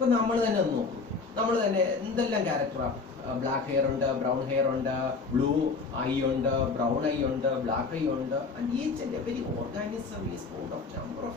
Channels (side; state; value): right; quieter; 4.4 dB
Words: നമ്മൾ തന്നെ ഒന്ന് നോക്കും, നമ്മൾ തന്നെ എന്തെല്ലാം ക്യാരക്ടറാണ്. Black hair ഉണ്ട്, ബ്രൗൺ ഹെയർ ഉണ്ട്, ബ്ലൂ ഐ ഉണ്ട്, ബ്രൗൺ ഐ ഉണ്ട്, ബ്ലാക്ക് ഐ ഉണ്ട്. And each and every organism is Ford of number